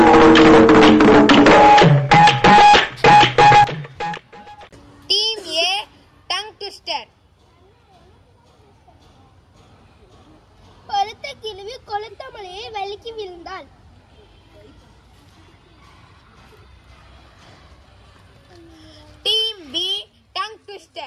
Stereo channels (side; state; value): both; identical; correlation 1.00